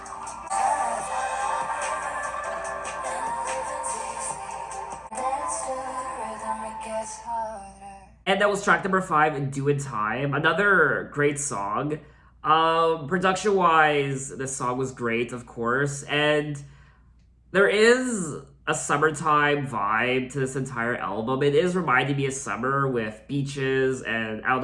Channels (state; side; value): identical; both; correlation 1.00